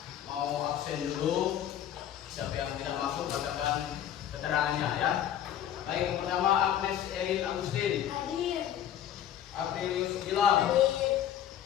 mau absen dulu. Siapa yang tidak masuk katakan keterangannya ya. Baik, yang pertama Agnes Erin Agustin. Hadir. Apelius Gilang. Hadir.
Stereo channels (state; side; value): quieter; right; 10.6 dB